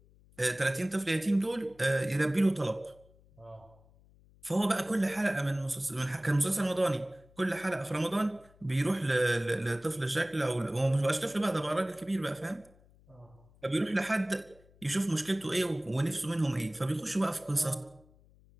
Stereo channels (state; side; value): noise; left; hum, 28 dB below the sound